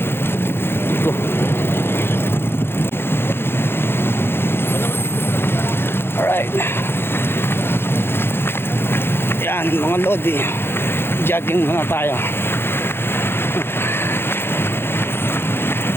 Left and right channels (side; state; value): right; late; 0.11 ms